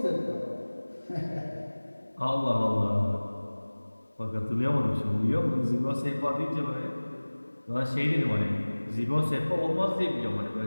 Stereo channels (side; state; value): both; inverted; correlation -1.00